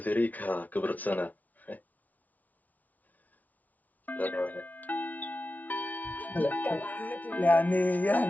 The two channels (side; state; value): right; late; 0.075 ms